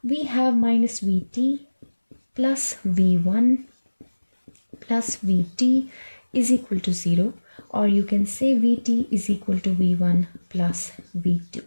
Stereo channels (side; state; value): both; inverted; correlation -1.00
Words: We have minus Vt plus V1 plus Vt is equal to 0, or you can say Vt is equal to V1 plus V2.